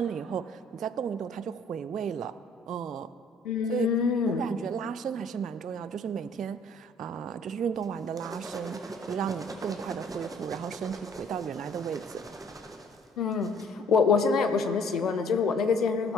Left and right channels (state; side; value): normal; both; correlation 0.58